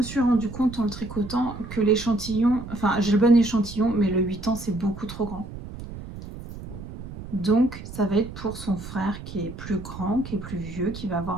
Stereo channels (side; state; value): right; noise; rumble, 12 dB below the sound